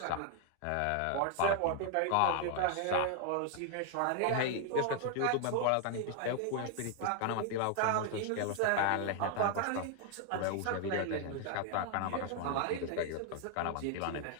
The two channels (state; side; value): different; both; correlation 0.00